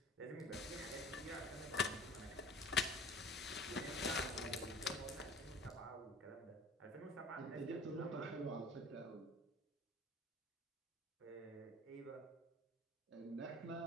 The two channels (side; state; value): both; normal; correlation 0.44